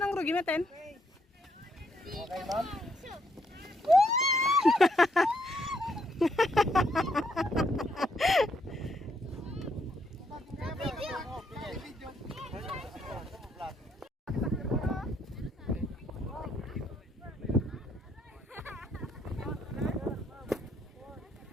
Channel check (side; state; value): both; normal; correlation 0.73